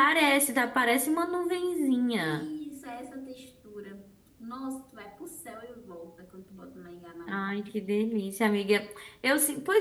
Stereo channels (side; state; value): both; identical; correlation 1.00